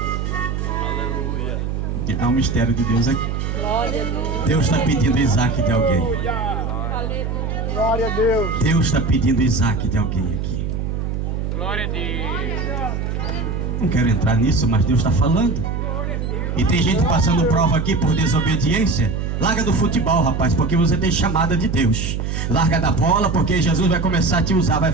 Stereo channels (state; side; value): noise; right; hum, 2 dB below the sound